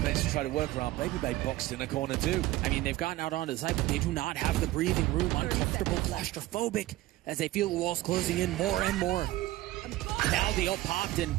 to try to work around. Baby Bay boxed in a corner too. I mean, they've gotten out onto the side, but they do not have the breathing room. Uncomfortable, claustrophobic, as they feel the walls closing in more and more. Now the ult popped, and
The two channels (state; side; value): quieter; left; 17.0 dB